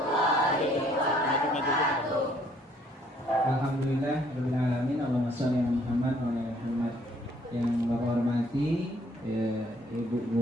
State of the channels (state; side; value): normal; both; correlation 0.63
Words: wabarakatuh. Alhamdulillah rabbil alamin. Allahumma shalli ala Muhammad wa ala Muhammad. Yang Bapak hormati Ibu